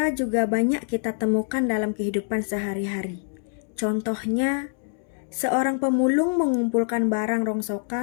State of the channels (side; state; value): right; silent; 62 dB below the other